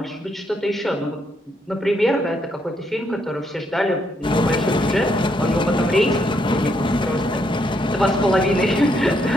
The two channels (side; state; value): both; normal; correlation 0.75